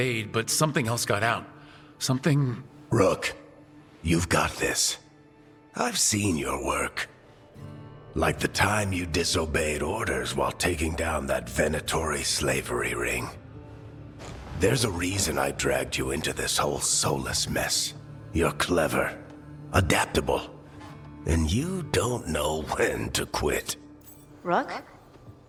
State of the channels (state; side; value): identical; both; correlation 1.00